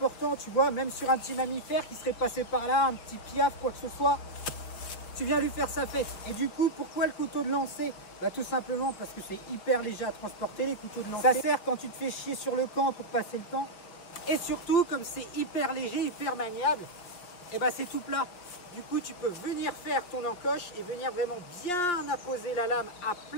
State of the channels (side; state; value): right; late; 5.6 ms